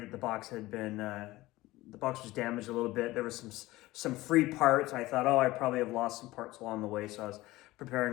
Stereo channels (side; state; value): right; quieter; 18.4 dB